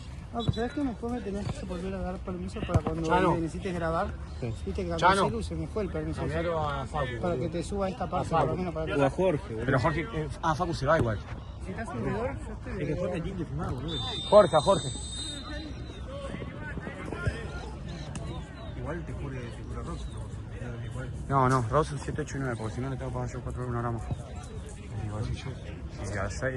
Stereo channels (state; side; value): identical; both; correlation 1.00